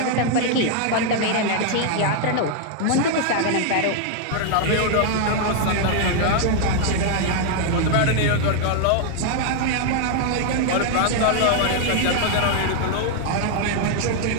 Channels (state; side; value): different; both; correlation 0.00